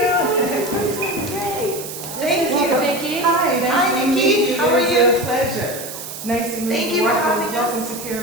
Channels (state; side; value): noise; right; hiss, 10 dB below the sound